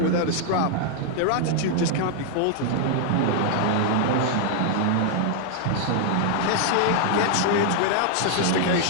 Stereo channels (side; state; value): both; different; correlation 0.00